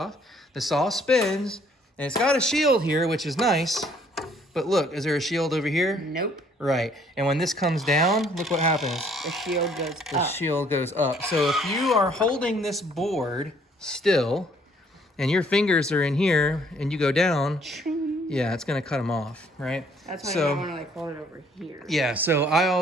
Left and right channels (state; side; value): normal; both; correlation 0.62